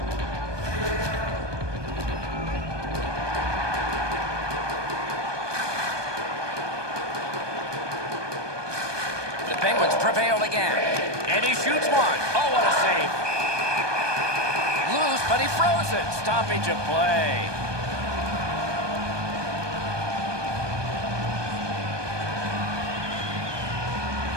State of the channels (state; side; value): late; left; 1.2 ms